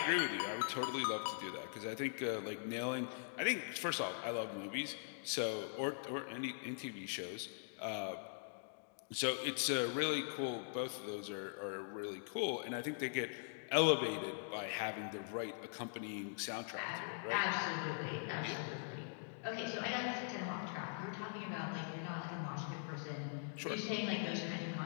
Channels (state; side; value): silent; right; digital silence